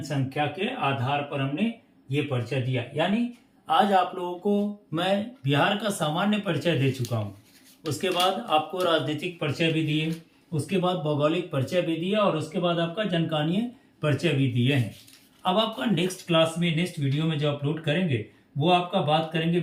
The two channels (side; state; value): both; identical; correlation 1.00